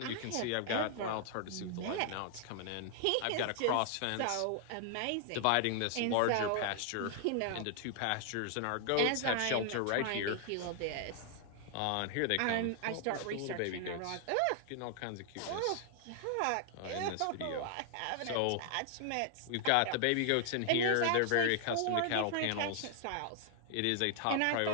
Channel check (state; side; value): different; both; correlation 0.00